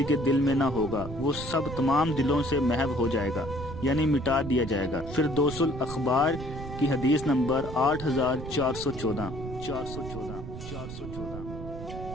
کے دل میں نہ ہوگا، وہ سب تمام دلوں سے محو ہو جائے گا، یعنی مٹا دیا جائے گا۔ فردوس الاخبار کی حدیث نمبر 8414۔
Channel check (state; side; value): noise; right; rumble, 9 dB below the sound